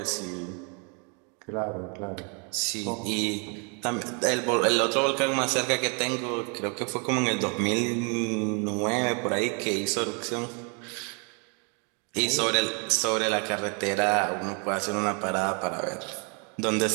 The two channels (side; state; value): left; quieter; 36.3 dB